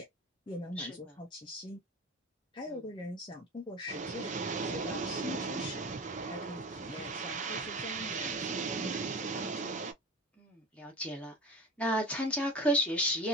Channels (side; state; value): both; normal; correlation 0.31